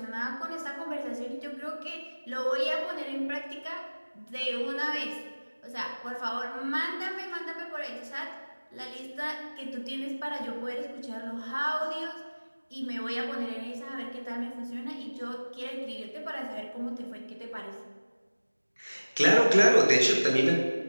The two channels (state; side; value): inverted; both; correlation -1.00